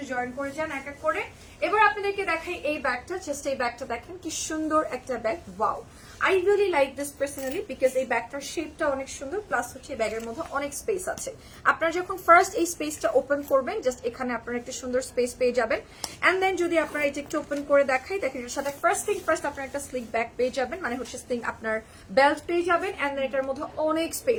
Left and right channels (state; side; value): identical; both; correlation 1.00